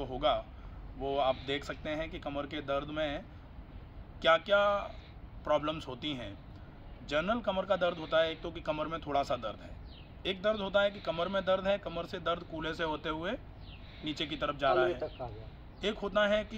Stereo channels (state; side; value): identical; both; correlation 1.00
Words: होगा वो आप देख सकते हैं कि कमर के दर्द में क्या क्या प्रॉब्लम्स होती हैं। जनरल कमर का दर्द होता है एक तो कि कमर में थोड़ा सा दर्द है, एक दर्द होता है कि कमर में दर्द है, कमर से दर्द कूल्हे से होते हुए नीचे की तरफ जा रहा है। एक होता है कि